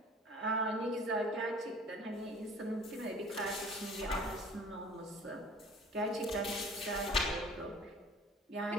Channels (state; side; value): normal; both; correlation 0.47